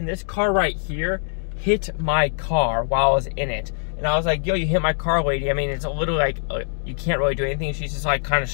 this car right here hit my car while I was in it. And I was like, yo, you hit my car, lady. I mean, it's a little like, you can't really do anything. She's just like kind of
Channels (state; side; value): silent; right; digital silence